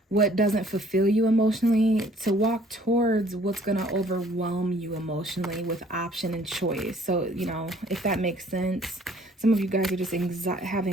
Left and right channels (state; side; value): normal; both; correlation 0.58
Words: what doesn't fulfill you emotionally to walk towards what's going to overwhelm you emotionally with option and choice. So, if that makes sense, some of you guys are just have